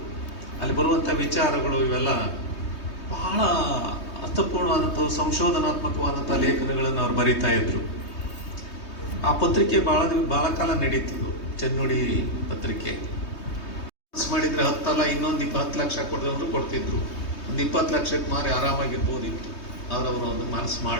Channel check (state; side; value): late; right; 3.2 ms